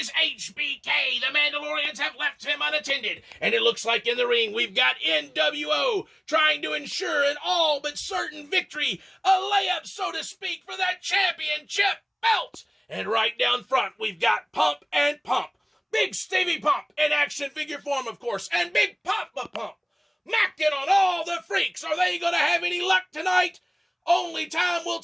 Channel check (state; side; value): identical; both; correlation 1.00